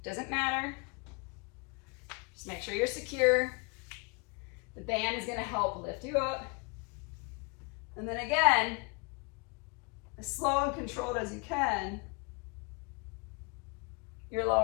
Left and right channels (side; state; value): right; quieter; 32.0 dB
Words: doesn't matter. Just make sure you're secure. The band is gonna help lift you up. And then again, as slow and controlled as you can, you're